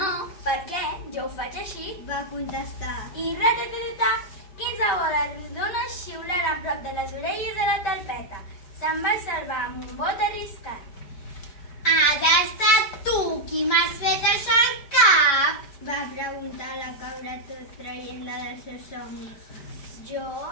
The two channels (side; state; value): right; late; 5.0 ms